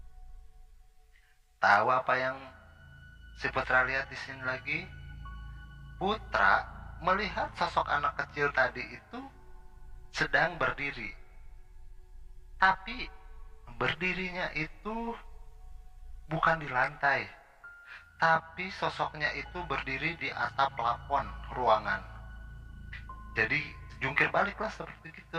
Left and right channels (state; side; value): identical; both; correlation 1.00